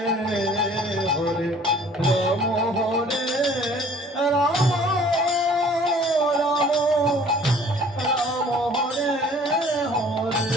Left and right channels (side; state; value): both; normal; correlation 0.53